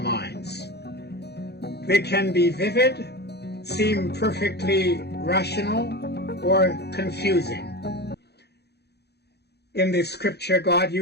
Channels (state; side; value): late; right; 0.48 ms